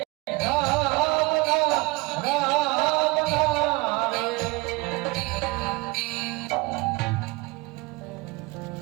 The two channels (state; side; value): quieter; left; 24.4 dB